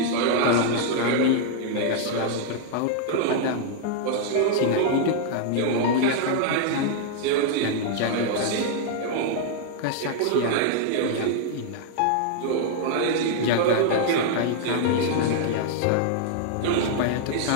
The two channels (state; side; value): different; both; correlation 0.00